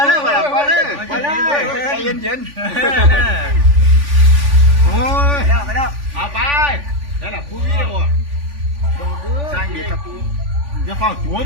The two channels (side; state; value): left; late; 3.5 ms